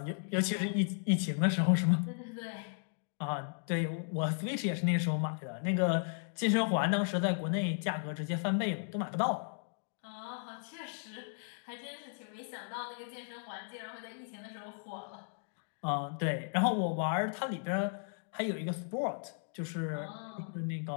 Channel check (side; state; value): right; silent; digital silence